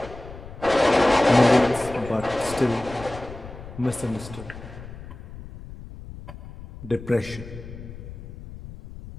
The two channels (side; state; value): left; noise; rumble, 14 dB below the sound